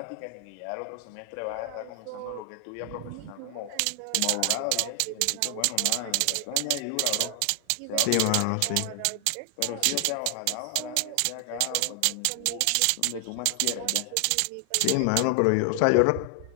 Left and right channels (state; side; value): different; both; correlation 0.00